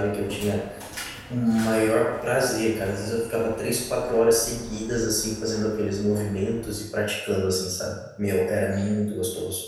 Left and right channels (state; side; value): identical; both; correlation 1.00